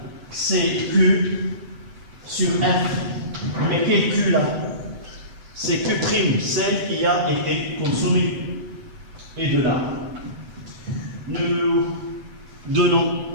CQ sur F. Mais quel Q là? C'est Q', celle qui a été consommée. Et de là, nous donnons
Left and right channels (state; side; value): late; left; 8.0 ms